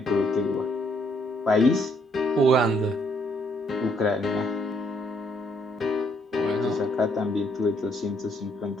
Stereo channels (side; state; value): both; normal; correlation 0.69